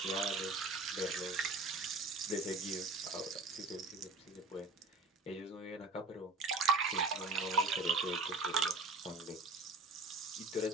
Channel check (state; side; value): quieter; left; 3.2 dB